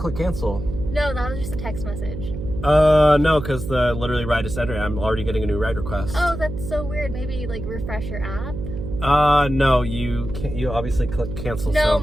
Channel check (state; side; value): noise; right; hum, 7 dB below the sound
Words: cancel? No, that was just a text message. No, because the literally ride is ended. I'm already getting a new ride request. Oh, that's so weird. Maybe like refresh your app? No, you can't. You obviously click cancel. No, so.